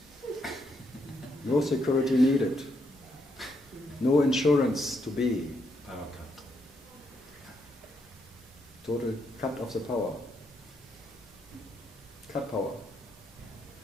No security needed. No insurance to be. Power cut. Total cut of the power. Cut power.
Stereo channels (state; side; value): normal; both; correlation 0.77